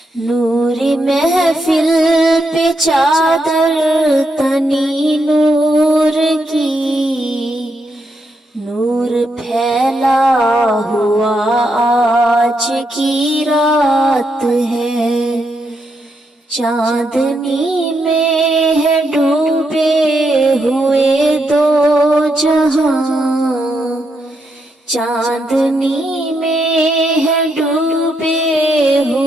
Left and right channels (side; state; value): both; normal; correlation 0.80